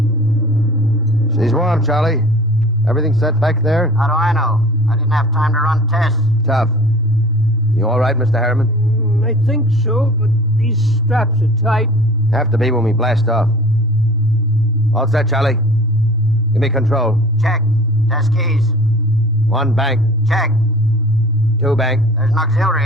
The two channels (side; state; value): both; normal; correlation 0.44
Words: She's warm, Charlie. Everything set back there? How do I know? I didn't have time to run tests. Tough. You all right, Mr. Harriman? I think so, but these straps are tight. Have to be when we blast off. All set, Charlie. Give me control. Check. Test keys. 1 bank. Check. 2 bank. There's an auxiliary